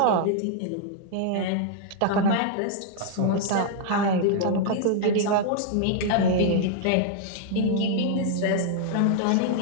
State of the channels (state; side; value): different; both; correlation -0.01